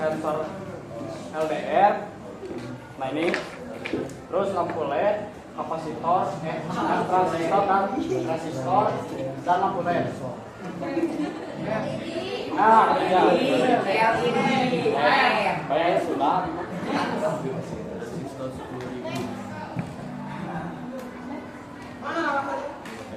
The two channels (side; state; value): both; identical; correlation 1.00